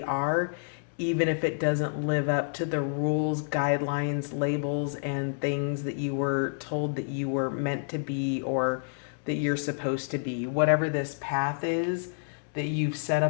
are, even if it doesn't live up to the rules, guidelines, labels, and things that you were told that you were meant to be or that you're supposed to be. Whatever this path is that you've set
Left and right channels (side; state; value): right; silent; digital silence